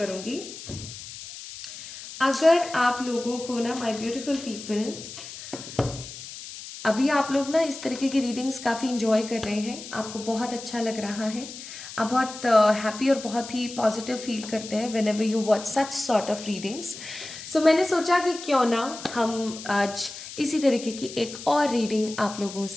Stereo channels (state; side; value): noise; left; hiss, 12 dB below the sound